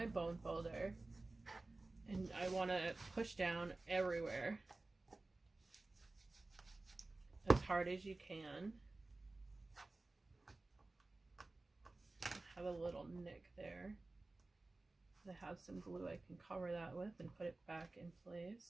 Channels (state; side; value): quieter; left; 3.1 dB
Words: bone folder, and I want to push down everywhere as hard as you can. I have a little nick there. I have some glue I can cover that with and put it back in